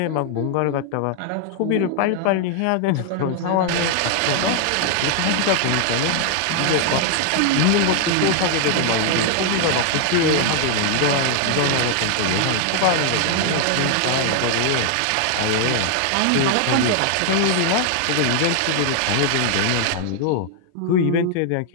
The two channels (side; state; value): both; different; correlation 0.00